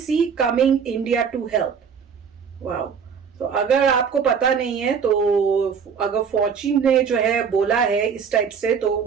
coming India to help. Wow. तो अगर आपको पता नहीं है तो अगर फॉची ने जो है बोला है इस टाइप से, तो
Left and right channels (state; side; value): quieter; left; 6.6 dB